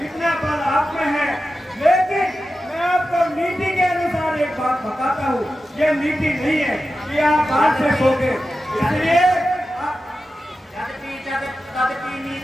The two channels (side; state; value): both; normal; correlation 0.92